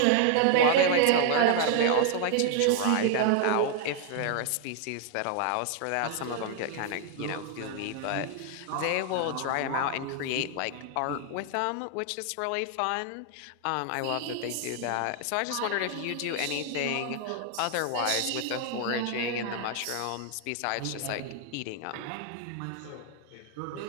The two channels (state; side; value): different; both; correlation 0.00